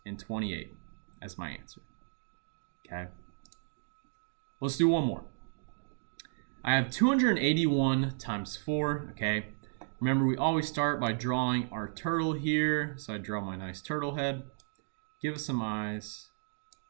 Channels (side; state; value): left; silent; digital silence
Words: as my answer. Okay. Let's do one more. I have 281 times 4. Okay. Remember, we always start by drawing our turtle here. So I draw my nice turtle head. Give it some eyes.